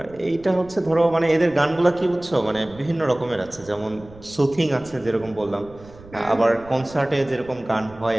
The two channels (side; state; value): right; noise; rumble, 21 dB below the sound